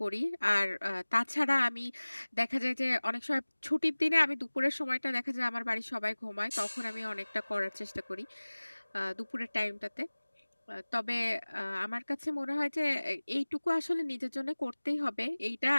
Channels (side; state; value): both; inverted; correlation -1.00